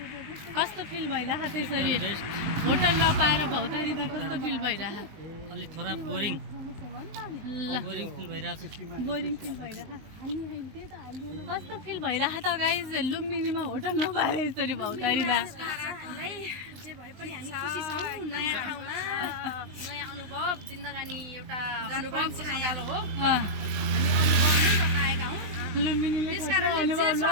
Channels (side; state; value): left; late; 20 ms